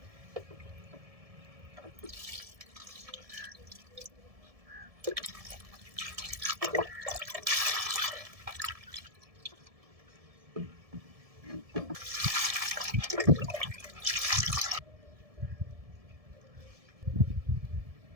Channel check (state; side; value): late; left; 1.7 ms